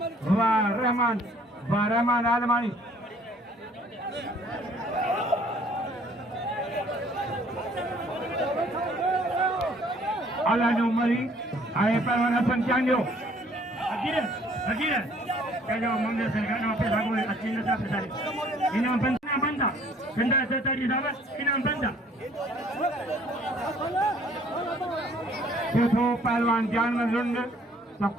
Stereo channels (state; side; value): normal; both; correlation 0.59